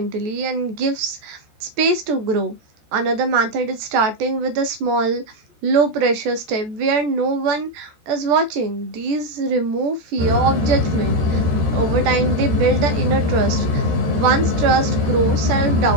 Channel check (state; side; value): late; left; 14 ms